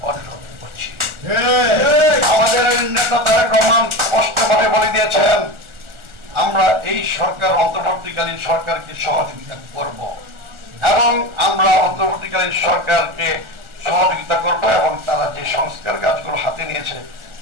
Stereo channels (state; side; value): late; left; 1.4 ms